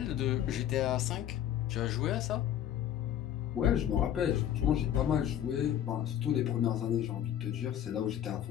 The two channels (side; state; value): right; quieter; 10.7 dB